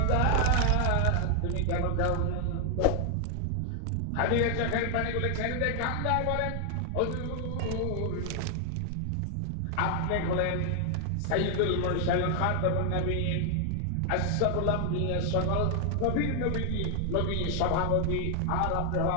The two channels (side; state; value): both; different; correlation 0.00